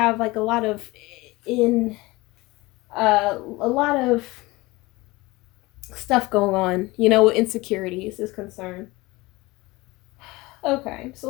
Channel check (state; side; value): quieter; right; 21.5 dB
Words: like a lot of stuff going on, you know, with insecurities is concerned. Okay,